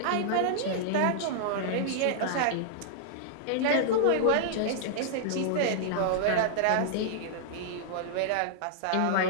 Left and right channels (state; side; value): different; both; correlation -0.01